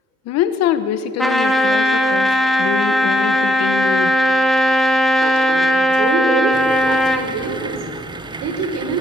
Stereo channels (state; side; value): normal; both; correlation 0.72